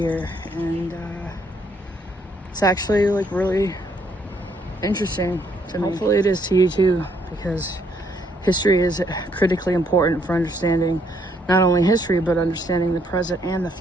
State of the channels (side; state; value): both; normal; correlation 0.70